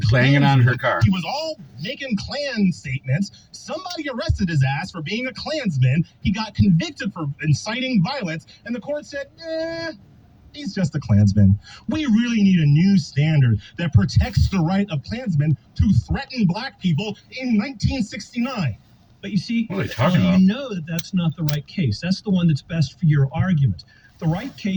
banging on her Klansman. car. He was all making Klan statements. Somebody arrested his ass for being a Klansman. He got convicted for inciting violence, and the court said, he's just a Klansman. We really need a new standard that protects the right of Klansmen to threaten black people in 1969. But you see, What are they talking you about? know that that's not the right case. That's the one that's best for your argument. The right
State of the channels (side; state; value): both; identical; correlation 1.00